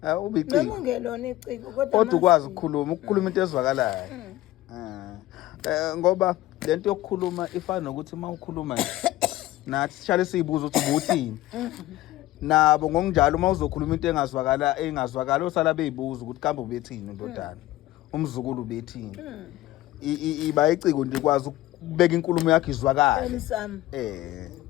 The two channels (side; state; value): right; quieter; 16.0 dB